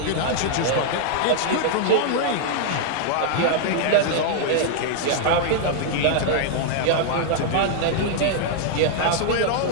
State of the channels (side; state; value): both; different; correlation -0.01